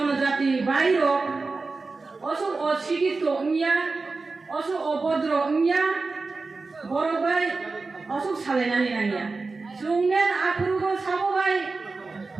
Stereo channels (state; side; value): quieter; left; 3.9 dB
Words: বাইরো অসু অশিক্ষিত ইয়া অসু অভদ্র ইয়া বড় বাই অসু সালাयनानै नांगौ जोंनेन आफुरुगो साबोबाय